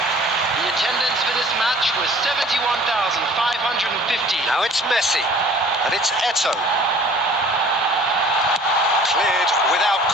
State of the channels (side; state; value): both; normal; correlation 0.50